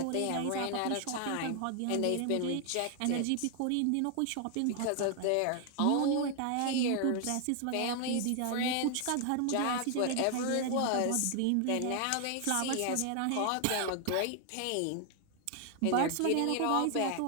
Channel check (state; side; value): different; both; correlation 0.00